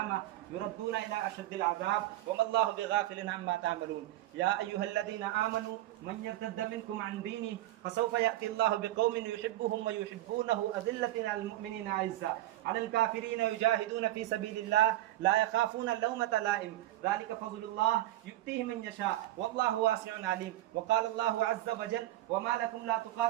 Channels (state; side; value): quieter; left; 15.3 dB